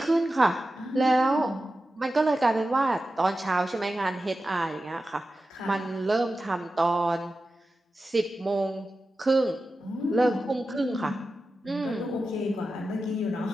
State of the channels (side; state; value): both; normal; correlation 0.93